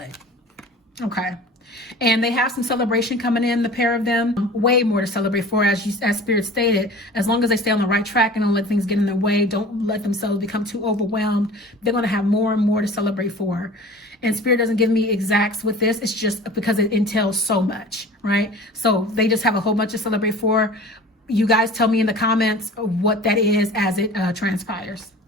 Okay. And they have some celebration coming in, the pair of them. Way more to celebrate for, as Spirit stated. As long as they stay on the right track and don't let things get in their way, don't let themselves become too overwhelmed, they're going to have more and more to celebrate for. And Spirit doesn't give me exacts with this. It's just because it entails so much, right? So they just have a whole bunch to celebrate for. You guys tell me in the comments what that is as it transpires.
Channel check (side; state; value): both; normal; correlation 0.41